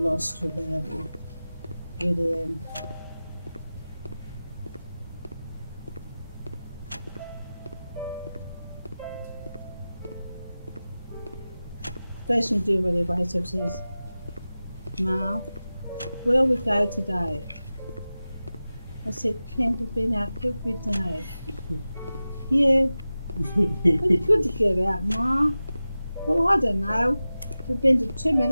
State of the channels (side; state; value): both; inverted; correlation -0.95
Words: lost without him. Really am. First thing to do when he wakes up says, Ma, where we go today? I said, Ken, we've been out every day. Yeah, it's good to get out, Ma. Well, I don't know. We've been to too